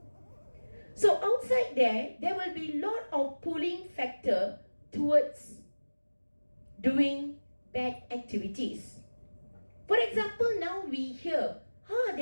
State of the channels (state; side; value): inverted; both; correlation -1.00